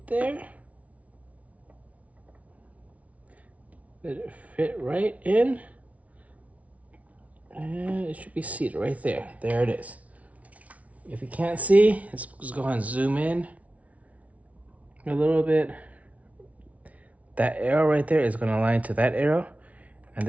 there. Let it fit right in. And it should be seated right there. There it is. If you can't see, let's go ahead and zoom in a little bit. That arrow right there is going to align to that arrow. And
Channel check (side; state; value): left; late; 0.067 ms